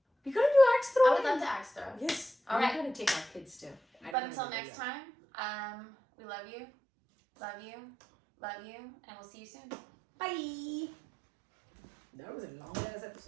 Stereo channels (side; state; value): left; drops out; at 4.2 s